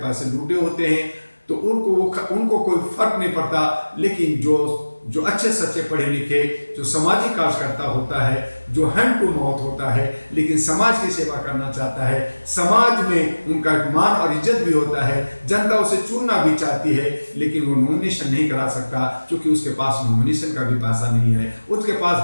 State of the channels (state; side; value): inverted; both; correlation -1.00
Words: पैसे लूटे होते हैं, तो उनको कोई फर्क नहीं पड़ता। लेकिन जो अच्छे सच्चे पढ़े लिखे, जो सामाजिक कार्यकर्ता होता है, जो हैंड टू माउथ होता है, लेकिन समाज की सेवा करना चाहता है, समाज में उनका मान और इज्जत भी होता है, जनता उसे चुनना भी चाहती है, लेकिन वो नॉमिनेशन नहीं करा सकता, क्योंकि उसके पास नॉमिनेशन का भी पैसा नहीं है, उसके